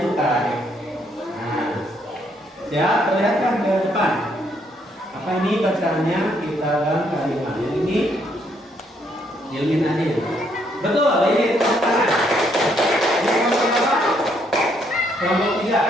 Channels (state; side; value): normal; both; correlation 0.71